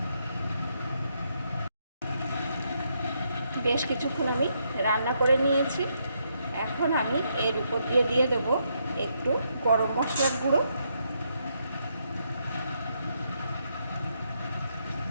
বেশ কিছুক্ষণ আমি রান্না করে নিয়েছি। এখন আমি এর উপর দিয়ে দেবো একটু গরম মশলার গুঁড়ো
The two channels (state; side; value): inverted; both; correlation -0.78